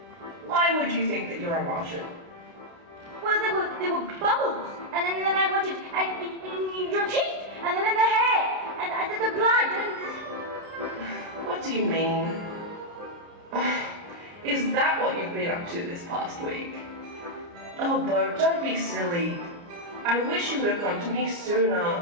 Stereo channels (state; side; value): late; left; 29 ms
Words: Why would you think that you're a Martian? Well, there were bubbles, and then I wanted and your teeth, and then the hair, and the blood, and... What do you mean? Is that what you've been up to this past week? Oh, Bo, don't be silly. I wish you would have come to me